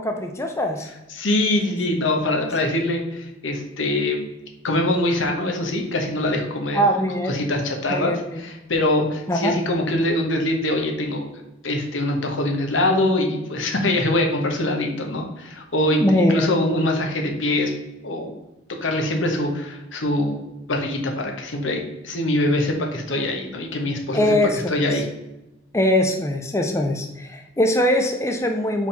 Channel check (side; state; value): both; normal; correlation 0.40